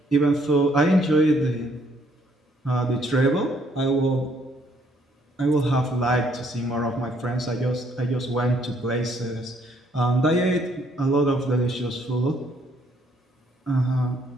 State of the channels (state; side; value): normal; both; correlation 0.67